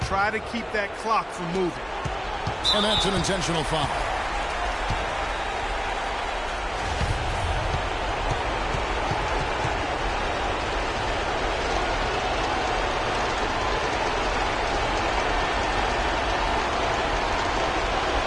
Try to keep that clock from moving. And that's an intentional foul.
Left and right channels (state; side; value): identical; both; correlation 1.00